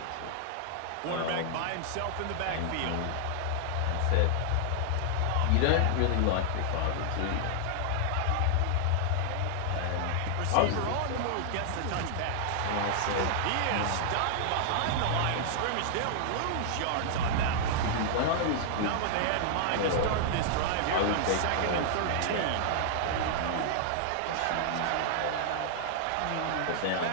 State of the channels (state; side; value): different; both; correlation -0.01